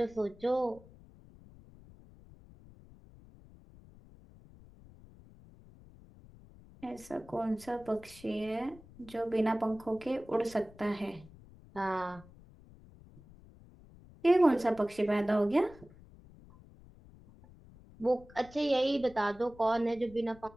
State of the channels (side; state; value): left; noise; rumble, 22 dB below the sound